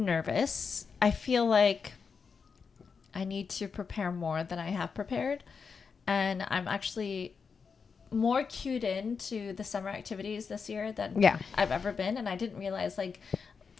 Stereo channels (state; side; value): quieter; right; 5.6 dB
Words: I feel like I need to prepare more than I have prepared. And I'm actually more cued into the summer activities this year than I've ever been. And I didn't realize, like,